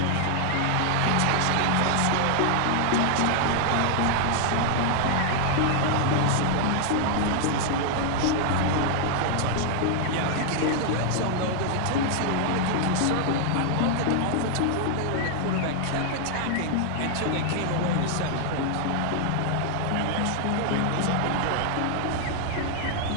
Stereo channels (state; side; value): different; both; correlation 0.00